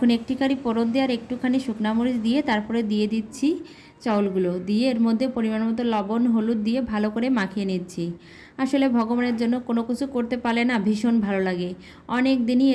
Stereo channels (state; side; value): identical; both; correlation 1.00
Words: একটিখানি ফোড়ন দিয়ে আর একটুখানি শুকনা মরিচ দিয়ে তারপরে দিয়ে দিচ্ছি চাউলগুলো, দিয়ে এর মধ্যে পরিমাণ মতো লবণ হলুদ দিয়ে ভালো করে মাখিয়ে নিচ্ছি। আসলে ভগবানের জন্য কোনো কিছু করতে পারলে না ভীষণ ভালো লাগে। অনেক দিনই